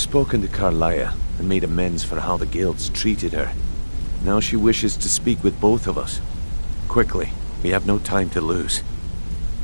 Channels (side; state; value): both; inverted; correlation -1.00